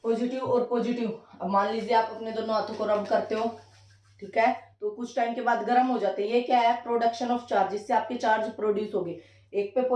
पॉजिटिव और पॉजिटिव, अब मान लीजिए आप अपने दोनों हाथों को रब करते हो, ठीक है, तो कुछ टाइम के बाद गर्म हो जाते हैं। ये क्या है? प्रोडक्शन ऑफ चार्ज, इससे आपके चार्ज प्रोड्यूस होंगे, एक पे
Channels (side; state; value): both; identical; correlation 1.00